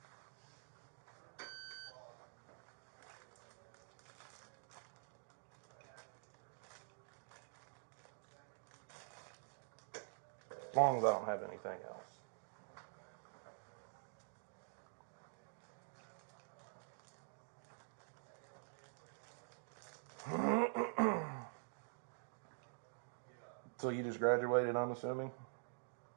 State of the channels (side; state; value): left; silent; digital silence